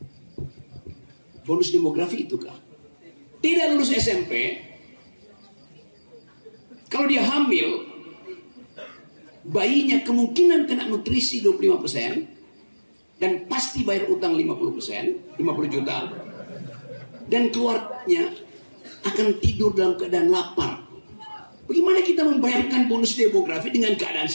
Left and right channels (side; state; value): both; inverted; correlation -1.00